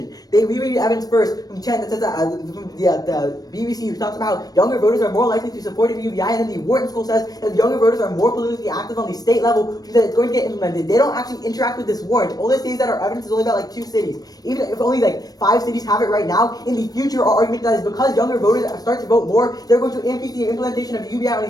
We read evidence first from Chen that says that from the BBC, who talks about how younger voters are more likely to support the UBI, and then the Wharton School says that younger voters are more politically active on the state level, which means that it's going to get implemented. They don't actually interact with this warrant. All they say is that our evidence is only about like 2 cities. Even if only like 5 cities have it right now, in the future, our argument that is because younger voters start to vote more, they're going to increase the implementation of UBI on the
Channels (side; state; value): right; late; 0.19 ms